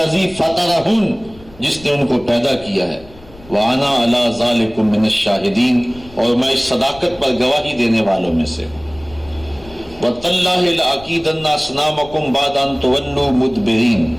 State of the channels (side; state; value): left; noise; rumble, 22 dB below the sound